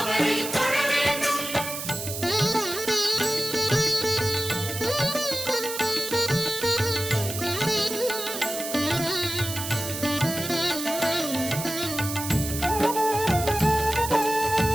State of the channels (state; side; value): noise; right; hiss, 6 dB below the sound